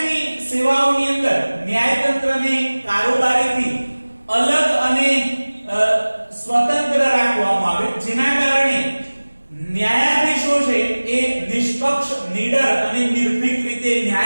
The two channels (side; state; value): both; inverted; correlation -1.00